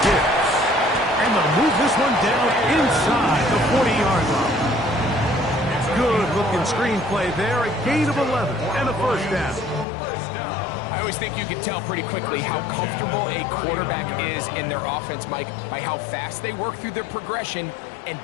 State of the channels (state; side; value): drops out; right; at 9.9 s